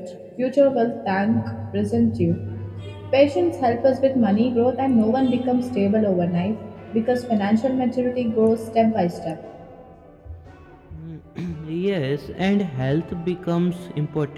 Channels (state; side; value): identical; both; correlation 1.00